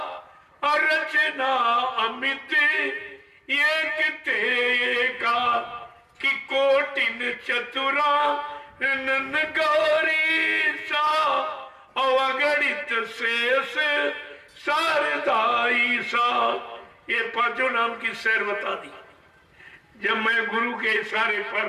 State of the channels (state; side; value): identical; both; correlation 1.00